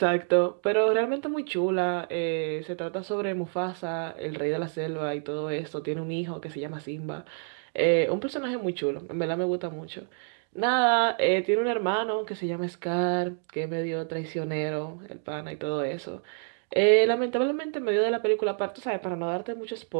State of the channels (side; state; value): left; silent; 59 dB below the other